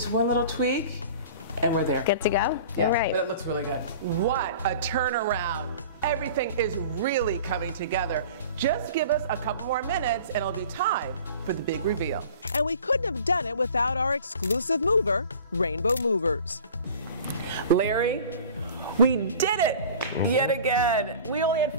one little tweak, and we're there. Good to go? Yeah, all right. But it looks really good. What a turnaround. Everything is really coming together. Just give us a couple more minutes, and it'll be time for the big reveal. And we couldn't have done it without our exclusive mover, Rainbow Movers. Larry, we did it yet again. We only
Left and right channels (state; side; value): inverted; both; correlation -0.43